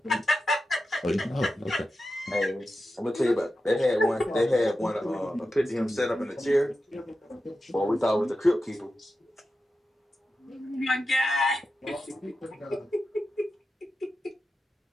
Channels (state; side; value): normal; both; correlation 0.91